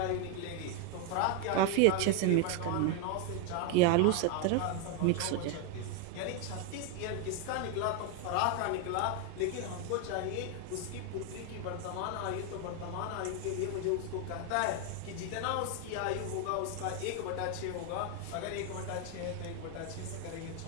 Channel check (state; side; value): different; both; correlation 0.01